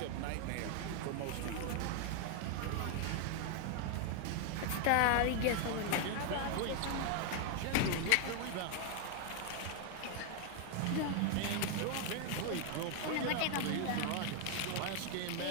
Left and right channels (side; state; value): both; different; correlation 0.00